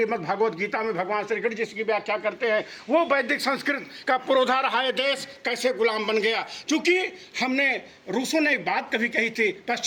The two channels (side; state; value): both; identical; correlation 1.00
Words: भगवद गीता में भगवान श्री कृष्ण जिसकी व्याख्या करते हैं, वो वैदिक संस्कृत का पुरोधा रहा है देश कैसे गुलाम बन गया। क्योंकि हमने, रूसों ने एक बात कभी कही थी,